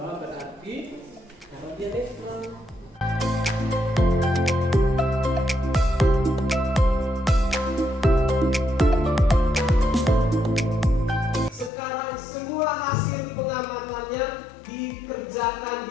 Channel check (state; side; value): drops out; right; at 11.7 s